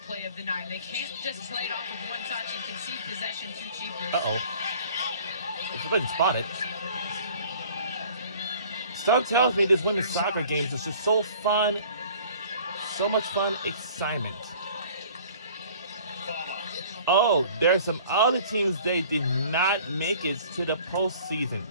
play of the 9. They can't just play it off with one touch and concede possession too cheaply. Uh-oh. If I didn't spot it. Stuff tells me this women's soccer games is just so fun. So much fun, excitement. Oh, there's some other teams they did not make it to the postseason,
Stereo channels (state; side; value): inverted; both; correlation -0.50